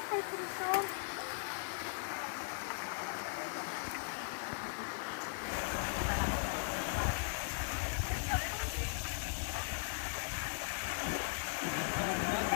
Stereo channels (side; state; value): right; silent; digital silence